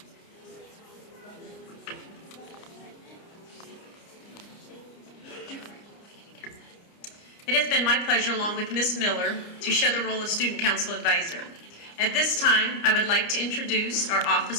It has been my pleasure, along with Ms. Miller, to share the role of Student Council Advisor. At this time, I would like to introduce our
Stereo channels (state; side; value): late; right; 29 ms